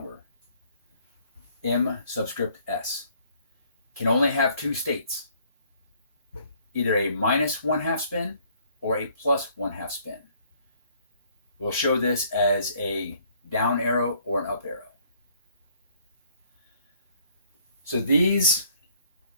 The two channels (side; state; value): both; inverted; correlation -0.62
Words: M subscript S. Can only have 2 states, either a minus 1/2 spin or a plus 1/2 spin. We'll show this as a down arrow or an up arrow. So these